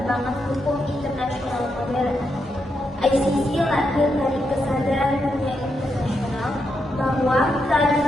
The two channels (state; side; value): normal; both; correlation 0.82